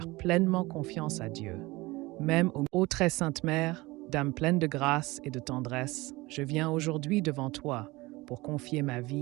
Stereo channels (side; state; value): left; quieter; 21.6 dB